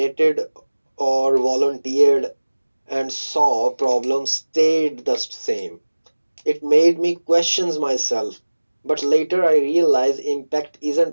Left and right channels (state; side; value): inverted; both; correlation -1.00